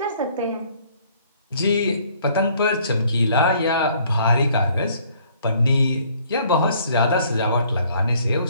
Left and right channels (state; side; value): inverted; both; correlation -0.61